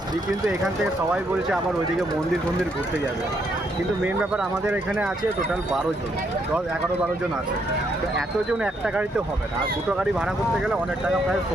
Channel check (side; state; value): both; normal; correlation 0.74